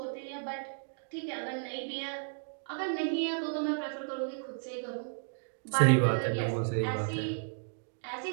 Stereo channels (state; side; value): silent; left; digital silence